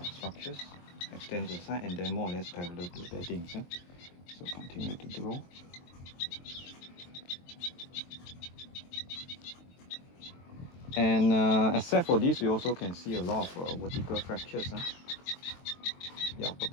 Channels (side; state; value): right; late; 23 ms